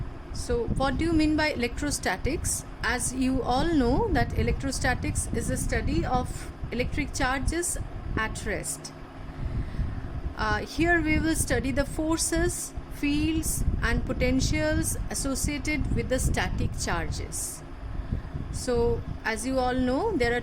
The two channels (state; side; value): identical; both; correlation 1.00